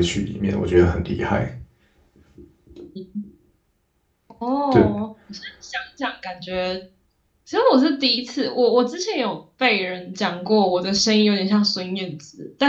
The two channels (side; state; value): both; identical; correlation 1.00